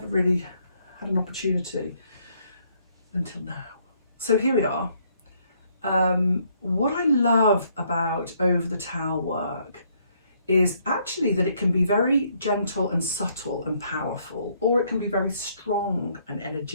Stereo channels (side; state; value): both; inverted; correlation -0.69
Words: really had an opportunity until now. So here we are. What I love about over the towel work is actually that it can be very gentle and subtle and powerful, or it can be very strong and